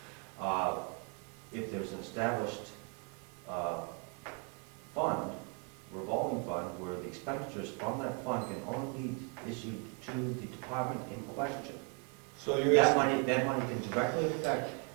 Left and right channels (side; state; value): left; quieter; 37.6 dB